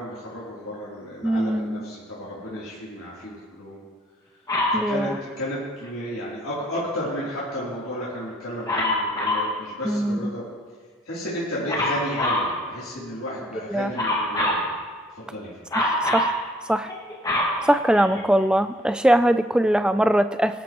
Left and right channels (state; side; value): normal; both; correlation 0.65